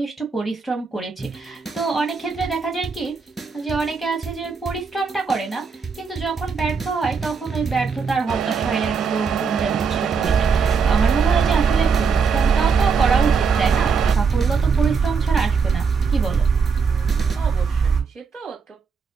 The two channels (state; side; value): quieter; left; 5.5 dB